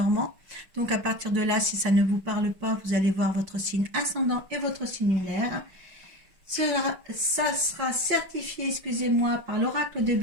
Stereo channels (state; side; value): late; left; 5.7 ms